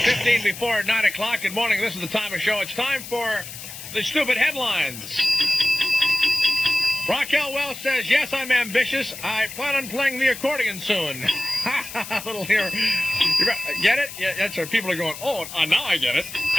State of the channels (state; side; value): noise; left; hiss, 12 dB below the sound